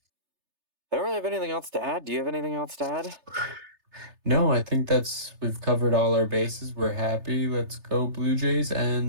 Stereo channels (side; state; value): left; late; 3.3 ms